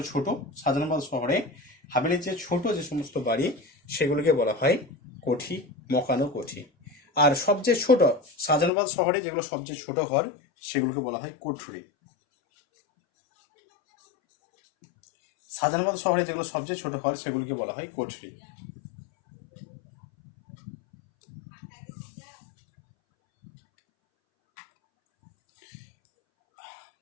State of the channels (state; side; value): drops out; right; at 8.7 s